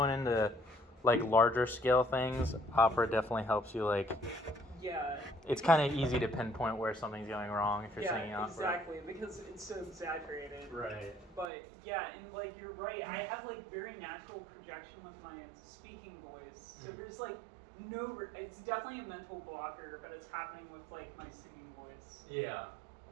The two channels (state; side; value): drops out; left; at 11.5 s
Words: into like larger scale things, opera definitely helps you. Like, Yeah. it's kind of easy to pinpoint where something's going wrong if you're singing opera. Exactly, because it's so exaggerated. Right. But yeah, and like you're right, I have like very natural projection with my speaking voice. So there's like it's definitely a mental blocker, but it's happening with like my singing voice. Yeah.